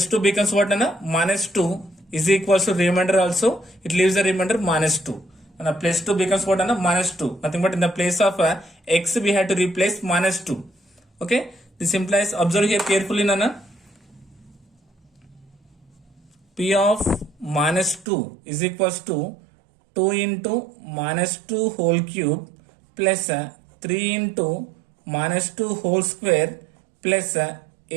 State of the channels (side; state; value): left; drops out; at 18.1 s